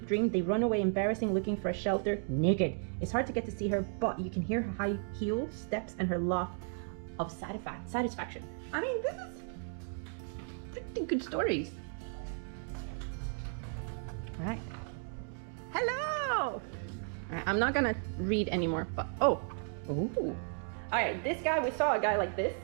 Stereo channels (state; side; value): silent; left; 55 dB below the other